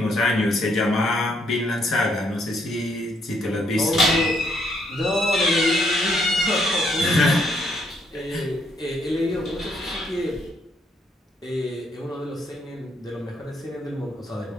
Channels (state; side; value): normal; both; correlation 0.72